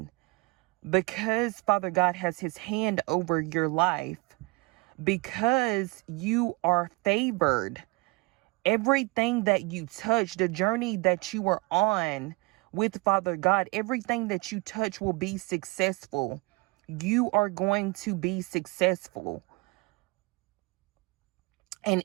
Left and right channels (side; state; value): left; quieter; 26.2 dB